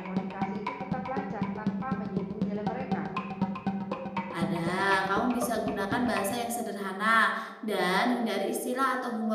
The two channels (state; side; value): identical; both; correlation 1.00